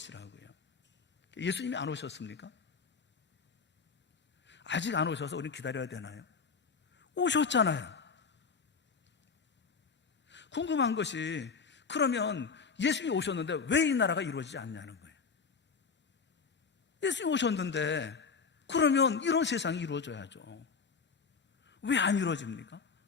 예수님이 안 오셨습니까? 아직 안 오셔서 우리는 기다려야 되나요? 오셨잖아요. 궁금한 것이, 그러면 예수님이 오셨는데 왜 이 나라가 이루어지지 않냐는 거예요. 예수님이 오셨는데 그러면 이런 세상이 이루어져야죠. 왜 안 이루어집니까?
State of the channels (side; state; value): right; quieter; 5.3 dB